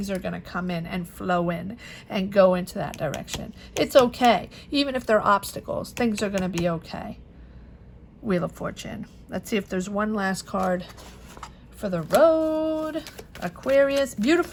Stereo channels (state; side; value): identical; both; correlation 1.00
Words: are going to come in and flow in and go into that direction. It's okay. Even if there are obstacles, things are going to be okay. Wheel of Fortune. Let's see if there's one last card for the road. Aquarius.